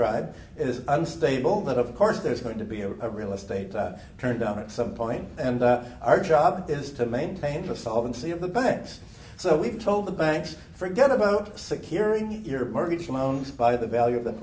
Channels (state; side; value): identical; both; correlation 1.00